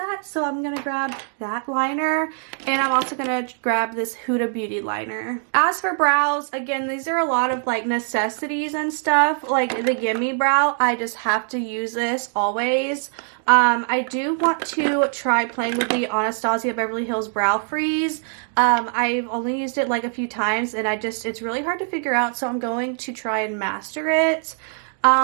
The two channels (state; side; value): silent; left; 58 dB below the other